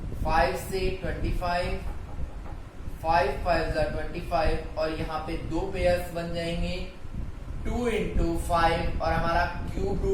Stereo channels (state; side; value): identical; both; correlation 1.00